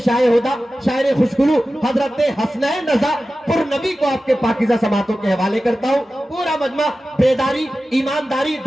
होदा शायर खुशगुलू हजरत हसनैन रजा पुरनबी को आपके पाकीज़ा समातों के हवाले करता हूँ। पूरा मजमा बेदारी, ईमानदारी,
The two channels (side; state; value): both; normal; correlation 0.95